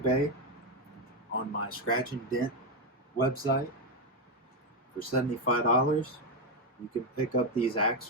on my Scratch and Dent website for $75. You can pick up these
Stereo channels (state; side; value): normal; both; correlation 0.05